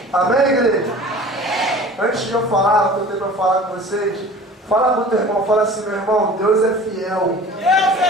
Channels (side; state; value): both; normal; correlation 0.42